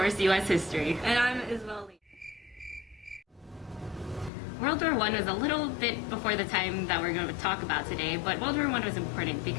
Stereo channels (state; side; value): drops out; right; at 4.3 s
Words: U.S. History. And I'm Isabel Lee. World War I was a little bit before the time that we're going to talk about today, but World War I was important